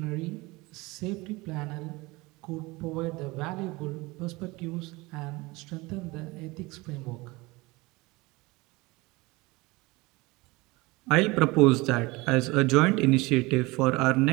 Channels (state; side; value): quieter; left; 22.9 dB